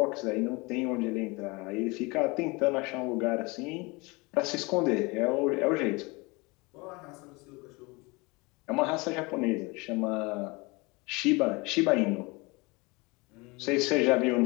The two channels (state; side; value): quieter; right; 25.9 dB